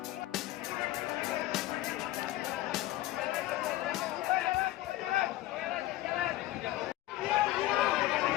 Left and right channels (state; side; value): quieter; right; 16.2 dB